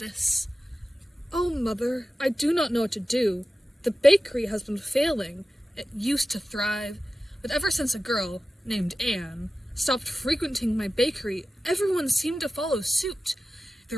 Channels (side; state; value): both; normal; correlation 0.95